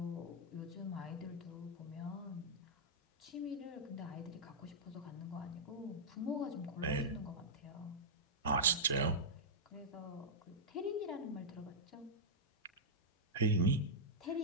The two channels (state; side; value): normal; both; correlation -0.11